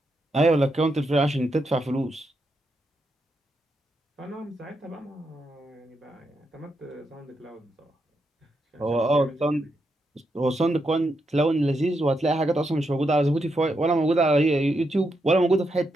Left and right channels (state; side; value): normal; both; correlation 0.82